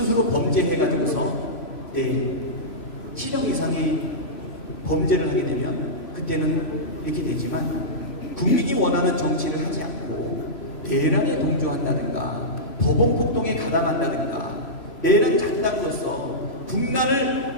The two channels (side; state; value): right; late; 3.0 ms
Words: 범죄해가지고서 실형 이상의 범죄를 하게 되면 그때는 이렇게 되지만 국민이 원하는 정치를 하지 않고 대란에 동조한다든가 법원 폭동에 가담한다든가 내란 작당으로서